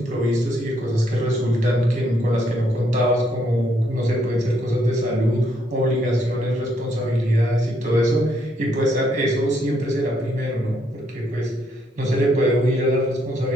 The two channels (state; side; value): normal; both; correlation 0.73